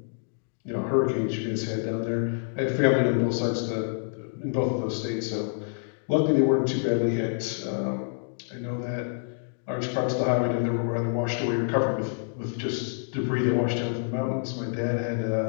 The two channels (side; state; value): right; silent; digital silence